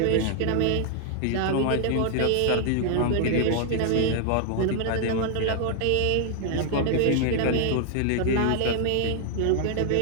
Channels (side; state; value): both; different; correlation 0.00